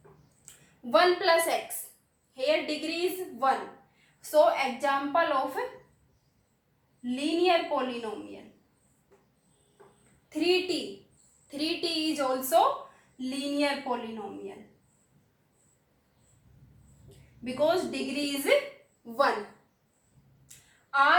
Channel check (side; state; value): both; identical; correlation 1.00